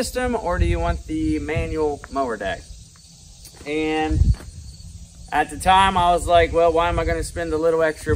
or do you want the manual mower deck? And at the time I was like, well, why am I going to spend a little extra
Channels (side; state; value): both; identical; correlation 1.00